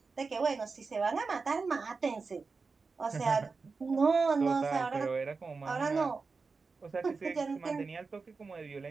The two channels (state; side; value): quieter; left; 4.5 dB